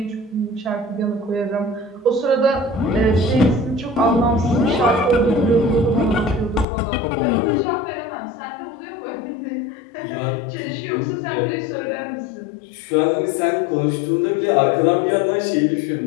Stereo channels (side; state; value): right; drops out; at 6.7 s